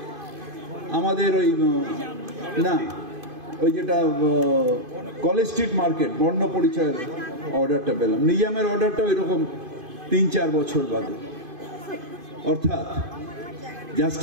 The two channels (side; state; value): left; late; 2.5 ms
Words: আমাদের ওই যেটা কলেজ স্ট্রিট মার্কেট বর্ণ পরিচয়ের অর্ডারটা পেলাম। নিজামের অর্ডারটাও এরকম 3-4 বছর বাদে। অর্থাৎ